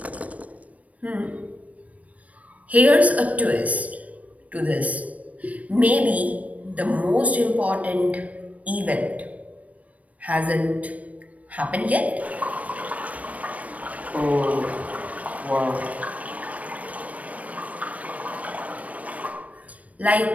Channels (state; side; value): late; left; 0.068 ms